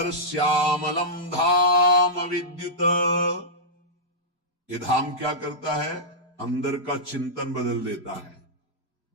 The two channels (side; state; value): both; normal; correlation -0.12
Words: श्यामलम धाम विद्युत। ये धाम क्या करता है? अंदर का चिंतन बदल देता है।